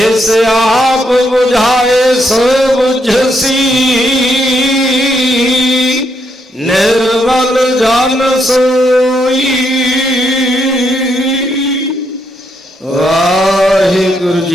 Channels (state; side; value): normal; both; correlation 0.77